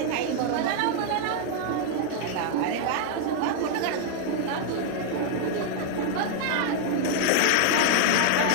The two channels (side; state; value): both; different; correlation 0.00